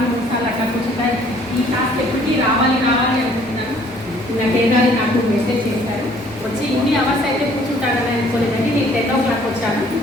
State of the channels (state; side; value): normal; both; correlation 0.58